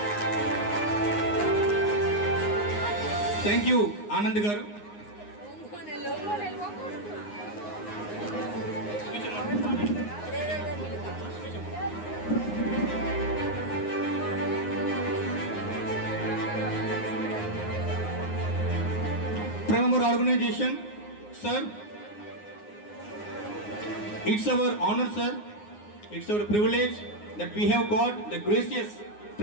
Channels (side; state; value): right; late; 9.6 ms